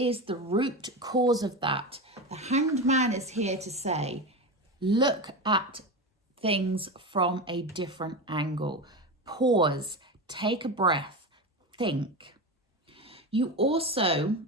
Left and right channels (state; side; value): normal; both; correlation 0.21